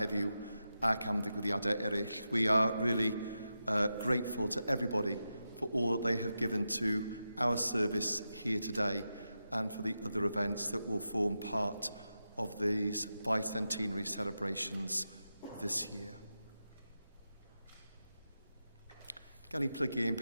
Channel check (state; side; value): inverted; both; correlation -0.89